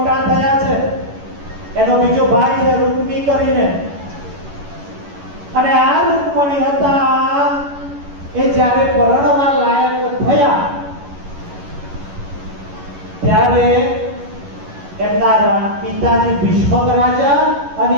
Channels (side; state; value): left; late; 11 ms